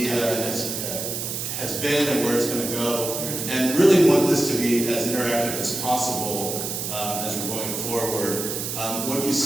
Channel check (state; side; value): noise; right; hiss, 4 dB below the sound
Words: has been and where it's going to go, and really want this to be as interactive as possible as we're going forward. What you